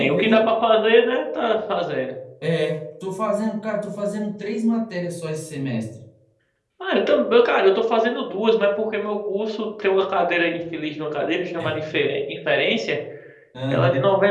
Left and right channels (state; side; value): identical; both; correlation 1.00